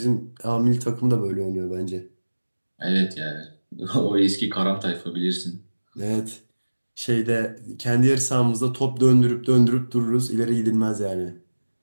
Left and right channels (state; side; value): inverted; both; correlation -1.00